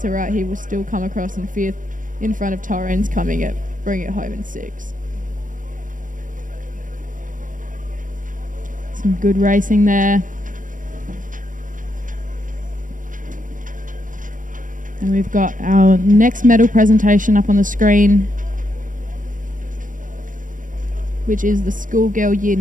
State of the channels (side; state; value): left; late; 0.38 ms